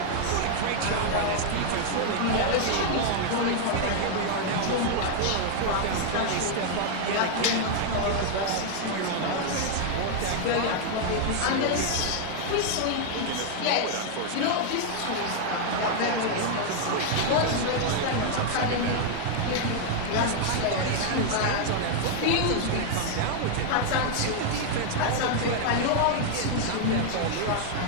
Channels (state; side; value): different; both; correlation 0.00